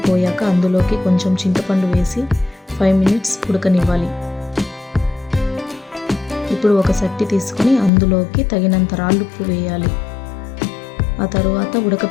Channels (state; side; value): drops out; right; at 7.9 s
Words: పోయాక అందులోకి కొంచెం చింతపండు వేసి 5 మినిట్స్ ఉడకనివ్వాలి. ఇప్పుడు ఒక సట్టి తీసుకొని అందులోకి తగినంత రాళ్ళుప్పు వేయాలి. ఆ తర్వాత